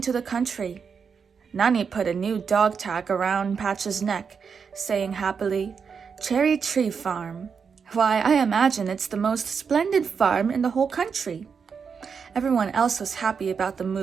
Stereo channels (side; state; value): left; quieter; 6.1 dB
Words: to the country. Nani put a new dog tag around Patch's neck, saying happily, "Cherry Tree Farm. Why, I imagine it's the most splendid farm in the whole country." Everyone else was happy about the